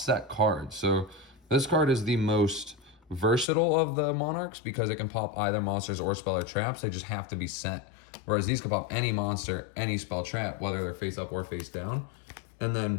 set cards. So this card is the most versatile of the Monarchs because it can pop either monsters or spell or traps. They just have to be set. Whereas these can pop any monster, any spell trap, whether they're face up or face down. And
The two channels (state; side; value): drops out; right; at 3.5 s